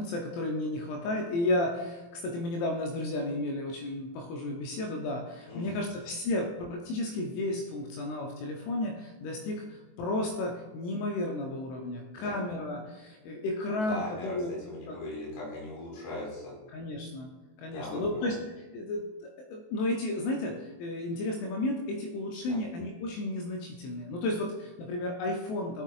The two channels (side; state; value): right; late; 23 ms